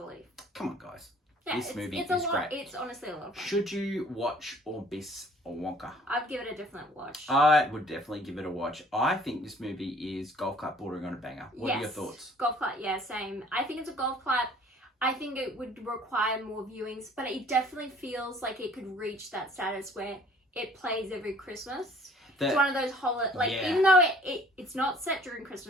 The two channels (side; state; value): both; normal; correlation 0.54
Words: Come on, guys. Yeah, this movie is great. It's honestly a lot of fun. Should you watch or miss a Wonka? I'd give it a different watch. I would definitely give it a watch. I think this movie is golf clap bordering on a banger. What are your thoughts? Golf clap, yeah, same. I think it's a golf clap. I think it would require more viewings, but it definitely feels like it could reach that status where it plays every Christmas. It's one of those even though it's not set during